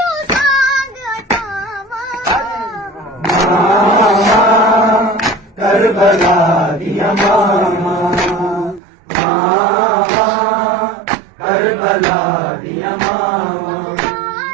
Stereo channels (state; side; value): drops out; left; at 8.8 s